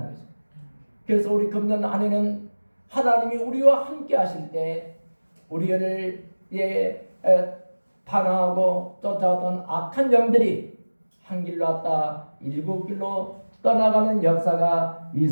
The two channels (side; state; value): both; inverted; correlation -1.00